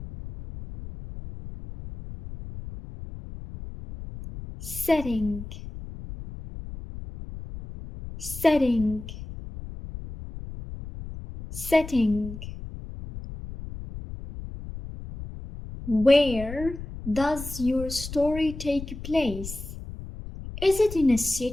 Setting. Setting. Setting. Where does your story take place? Is it in a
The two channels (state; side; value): noise; left; rumble, 11 dB below the sound